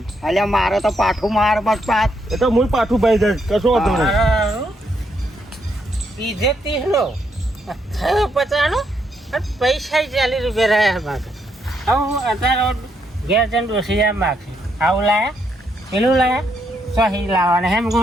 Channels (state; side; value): normal; both; correlation 0.76